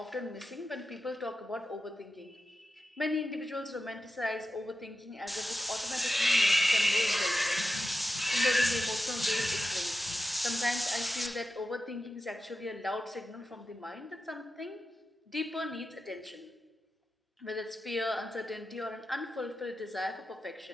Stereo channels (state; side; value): normal; both; correlation 0.91